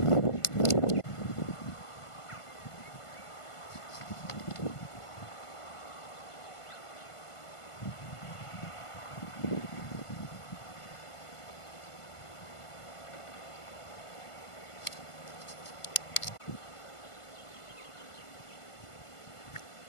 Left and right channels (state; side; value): late; right; 1.5 ms